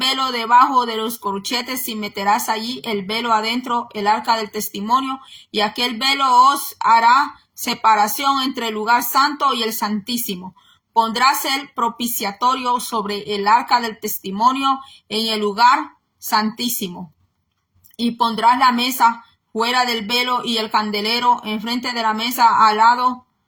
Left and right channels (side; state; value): both; identical; correlation 1.00